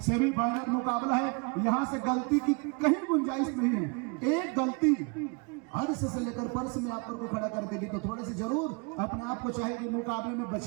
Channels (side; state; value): left; quieter; 32.4 dB